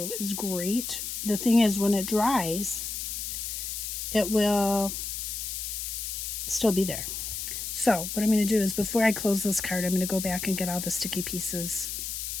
is great. The thing is, when it dries, it will still be there. So what I'm going to do is, before I close this card, I'm going to go back and get all the sticky bits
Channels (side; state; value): left; noise; hiss, 4 dB below the sound